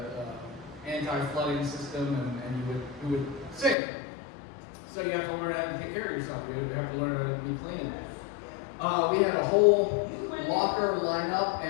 anti-flooding system, and you would sink. So you have to learn how to take care of yourself. You have to learn how to be clean. We had a whole locker lineup,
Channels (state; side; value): drops out; right; at 3.8 s